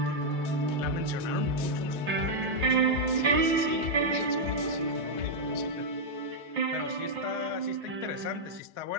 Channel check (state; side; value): late; left; 5.6 ms